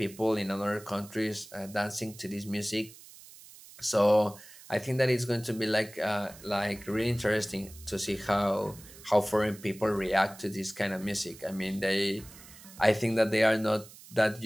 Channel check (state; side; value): noise; right; hiss, 19 dB below the sound